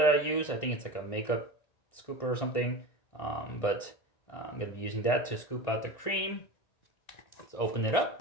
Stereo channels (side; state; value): right; late; 1.9 ms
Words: I use. I think it's like a makeup scooper or something. But I'm going to be using that to scoop out the cream. Let's open it